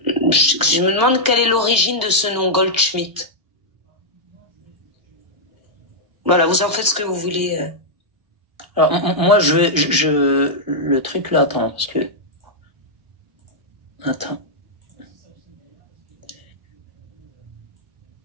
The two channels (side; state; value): left; late; 1.0 ms